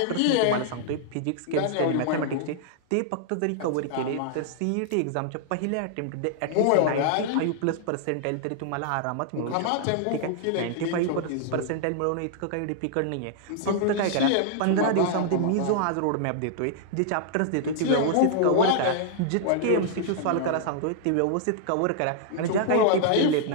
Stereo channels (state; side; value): different; both; correlation -0.01